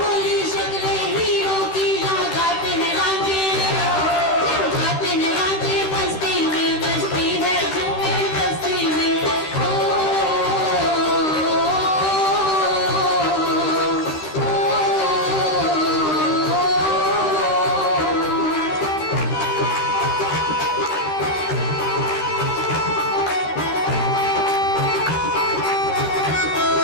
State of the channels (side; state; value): right; late; 13 ms